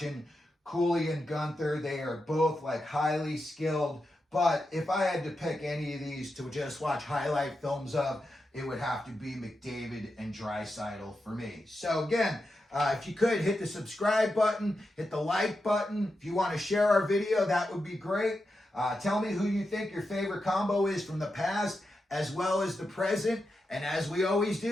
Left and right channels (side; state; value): both; normal; correlation 0.88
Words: Cooley and Guenther. They are both like highly skilled. But if I had to pick any of these to just watch highlight films of, it would have to be McDavid and Draisaitl for me. So again, if you could, hit the subscribe button, hit the like button. If you want to share our video, that would be great. Tell me who you think your favorite combo is from the past as well as the present. And as we always